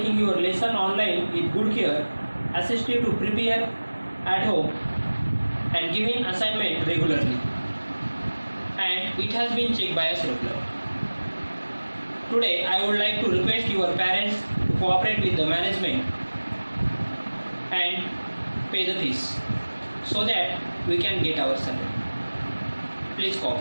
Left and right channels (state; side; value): inverted; both; correlation -1.00